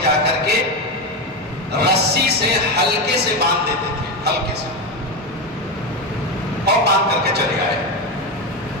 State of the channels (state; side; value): normal; both; correlation 0.14